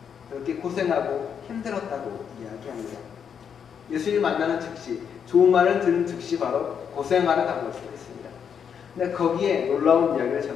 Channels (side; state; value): right; quieter; 7.5 dB